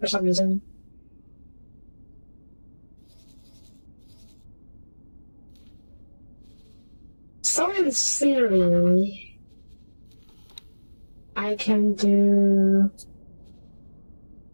some reason. So in theory, I can do...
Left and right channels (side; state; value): both; inverted; correlation -1.00